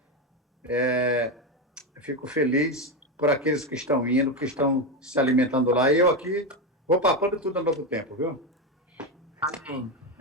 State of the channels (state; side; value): normal; both; correlation 0.12